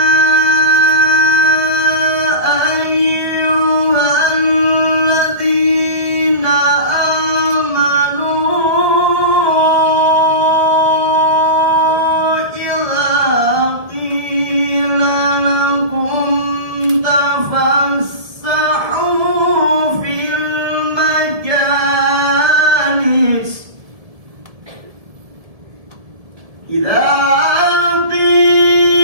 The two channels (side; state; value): left; late; 1.7 ms